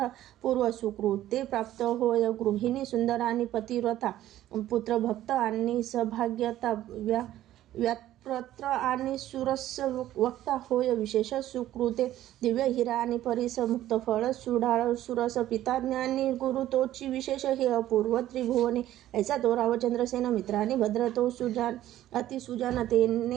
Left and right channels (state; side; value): quieter; left; 13.5 dB